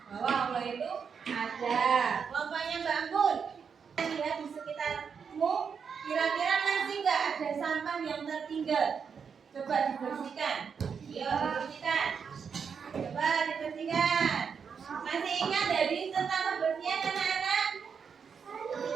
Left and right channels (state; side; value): quieter; left; 6.4 dB